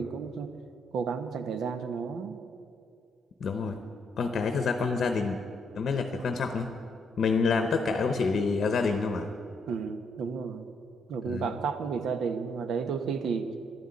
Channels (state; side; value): normal; both; correlation 0.73